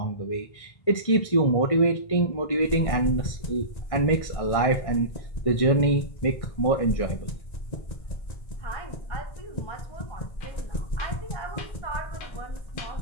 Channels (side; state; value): right; late; 1.6 ms